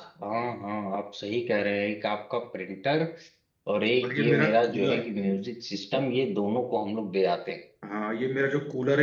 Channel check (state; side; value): identical; both; correlation 1.00